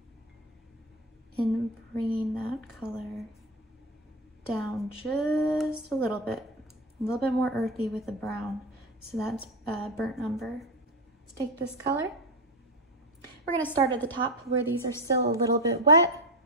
And bringing that color down just a little bit more earthy with the brown. So that's burnt umber. Let's take this color. We're gonna start at the top where these are still a little bit wet.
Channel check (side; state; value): both; normal; correlation 0.15